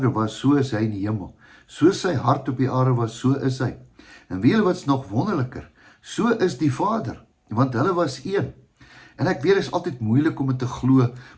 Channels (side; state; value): both; identical; correlation 1.00